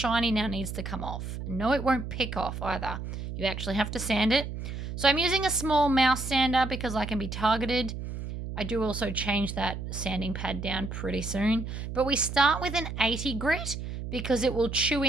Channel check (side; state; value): right; noise; hum, 7 dB below the sound